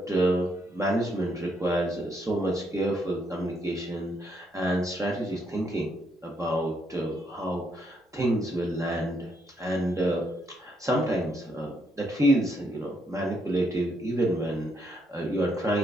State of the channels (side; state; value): both; normal; correlation 0.75